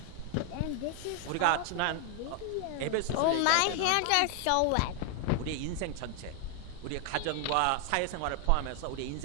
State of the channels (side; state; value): both; different; correlation 0.00